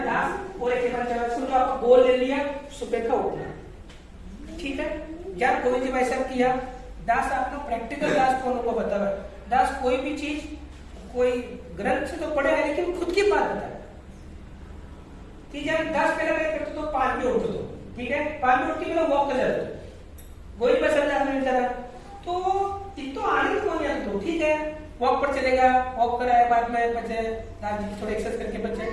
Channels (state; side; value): identical; both; correlation 1.00